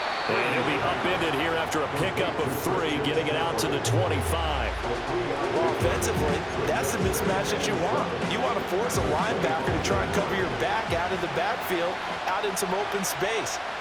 And he'll be upended here after a pickup of 3, getting it out to the 25. Well, offensively, that's the mismatch that you want. You want to force a linebacker to try and cover your back out of the backfield, out in some open space.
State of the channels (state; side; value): identical; both; correlation 1.00